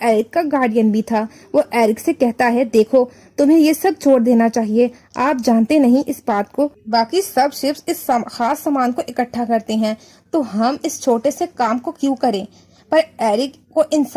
एरिक का गार्डियन भी था। वो एरिक से कहता है, देखो तुम्हें ये सब छोड़ देना चाहिए, आप जानते नहीं इस बात को। बाकी सब शिप्स इस खास सामान को इकट्ठा करते हैं, तो हम इस छोटे से काम को क्यों करें। पर एरिक को इन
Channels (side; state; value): both; identical; correlation 1.00